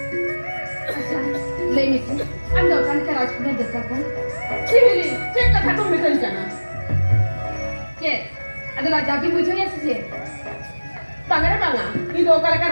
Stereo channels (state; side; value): inverted; both; correlation -1.00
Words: ले मिस हम दोकान के राजकुमार दस्ता को हिली cek kata kau misal jana cek adalah jadi bujuk ya sih Panggara banga, ini dua kali